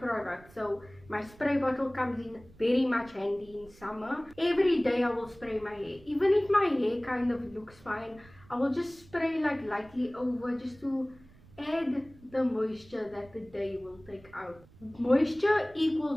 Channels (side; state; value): right; noise; rumble, 24 dB below the sound